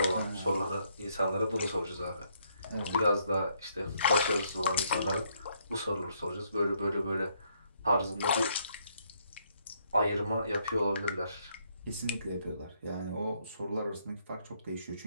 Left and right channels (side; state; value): both; inverted; correlation -0.72